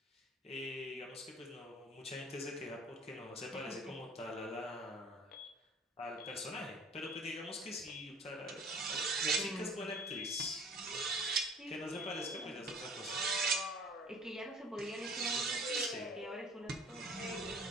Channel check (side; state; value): both; normal; correlation 0.48